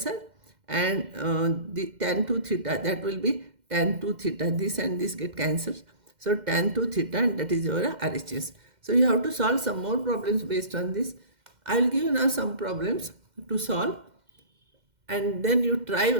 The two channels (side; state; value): left; late; 2.1 ms